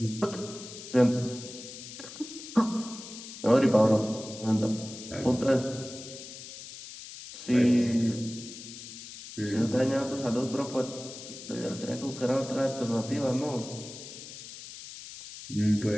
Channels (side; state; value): left; noise; hiss, 13 dB below the sound